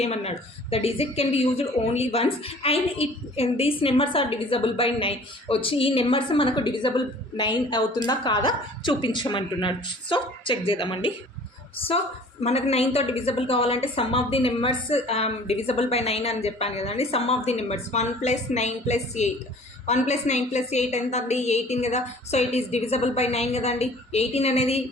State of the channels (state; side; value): normal; both; correlation 0.49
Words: The digit can be used only once and these numbers are divisible by 9 వచ్చి ఈ నెంబర్స్ మనకు డివిజబుల్ 9 అవుతుందా కాదా చూపించమంటున్నాడు. సో చెక్ చేద్దామండి. సో మనకు 9తో డివిజబుల్ కావాలంటే sum of the numbers divisible by 9 అని చెప్పాను కదండి. సమ్ ఆఫ్ ది నెంబర్స్ 1 + 9 + 8, 1 + 9 + 8 ఎంత అండి? 18 కదా. So it is divisible by 9 కదండి. 18 అనేది